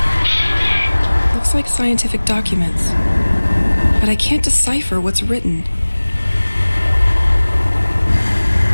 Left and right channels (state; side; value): inverted; both; correlation -1.00